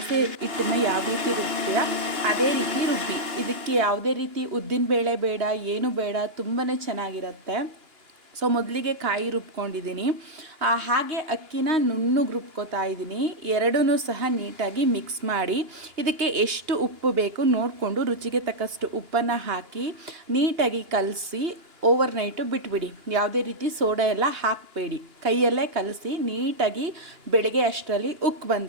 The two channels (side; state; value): left; late; 2.9 ms